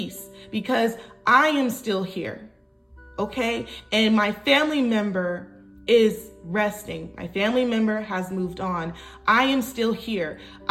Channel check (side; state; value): both; identical; correlation 1.00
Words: because I am still here. Okay? And my family member is resting. My family member has moved on. I am still here.